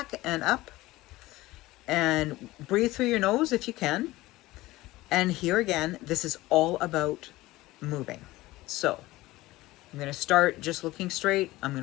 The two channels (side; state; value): right; quieter; 18.4 dB